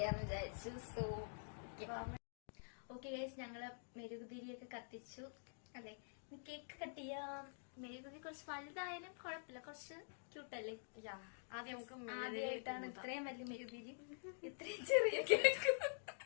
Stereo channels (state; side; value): silent; right; digital silence